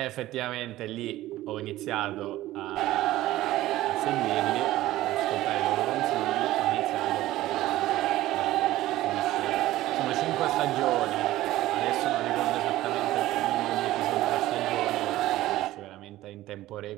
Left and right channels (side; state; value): left; quieter; 15.7 dB